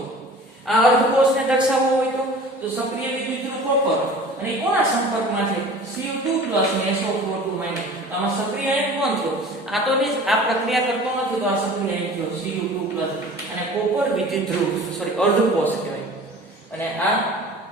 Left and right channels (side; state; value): both; normal; correlation 0.43